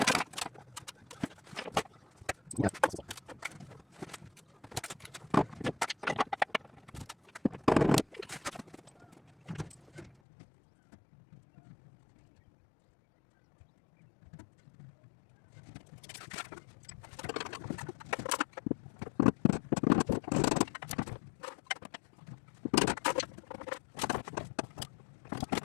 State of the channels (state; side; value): drops out; right; at 10.2 s